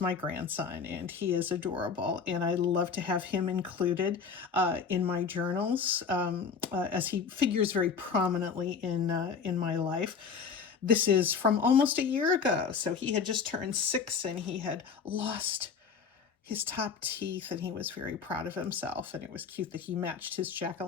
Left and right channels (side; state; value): right; quieter; 5.9 dB